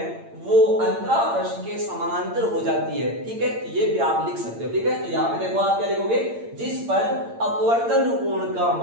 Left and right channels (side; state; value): left; late; 8.8 ms